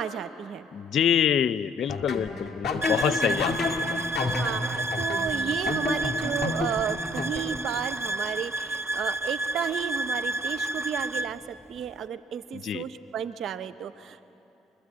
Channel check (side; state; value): both; normal; correlation 0.59